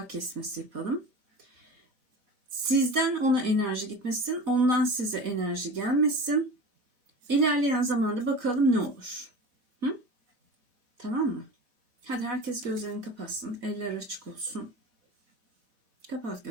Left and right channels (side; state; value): left; late; 4.1 ms